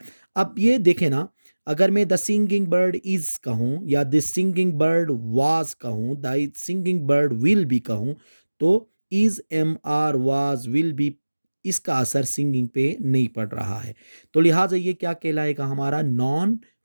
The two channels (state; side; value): inverted; both; correlation -1.00